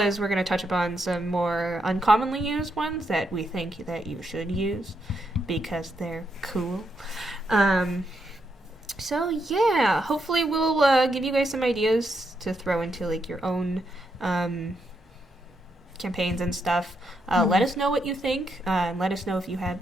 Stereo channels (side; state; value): both; normal; correlation 0.80